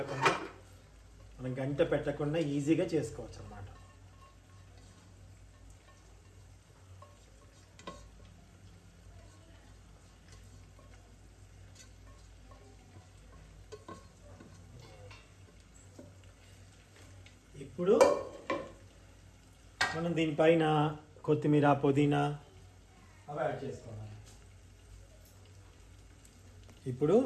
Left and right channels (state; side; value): identical; both; correlation 1.00